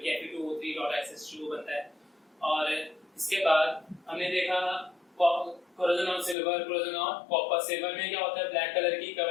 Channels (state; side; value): drops out; right; at 6.4 s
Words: Fe2O3.SH2 बनता है। और इसके बाद हमने देखा corrosion on silver, corrosion on copper. Silver में क्या होता है, ब्लैक कलर की